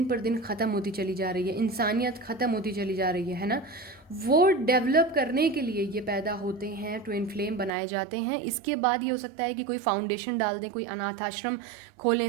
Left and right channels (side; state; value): left; drops out; at 7.7 s